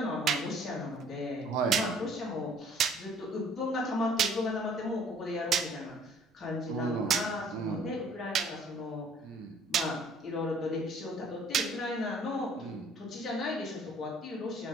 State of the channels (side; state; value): both; normal; correlation 0.56